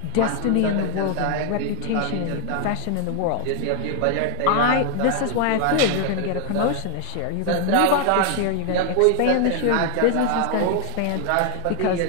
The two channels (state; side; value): different; both; correlation 0.00